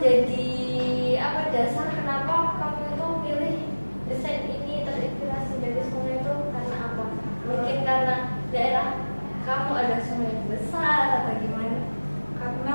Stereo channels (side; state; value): both; inverted; correlation -1.00